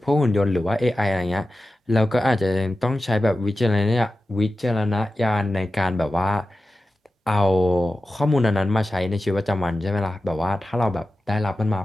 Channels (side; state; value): both; normal; correlation 0.93